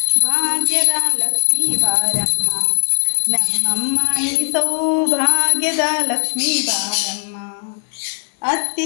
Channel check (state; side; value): silent; right; 66 dB below the other